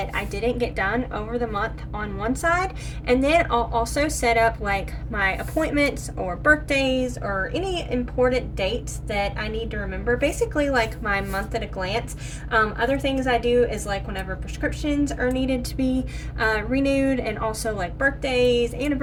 I didn't get done over the month on one side, and then I'll also set up like my appointments or birthdays or any important dates that I need to remember, basically like my month at a glance. Other things I do is like whenever prescriptions are needed to be renewed, and also like birthdays,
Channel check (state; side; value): identical; both; correlation 1.00